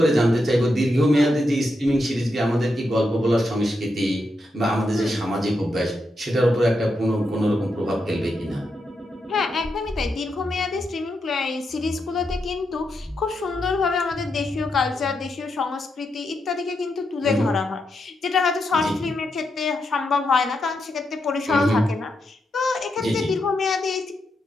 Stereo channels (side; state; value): both; normal; correlation 0.84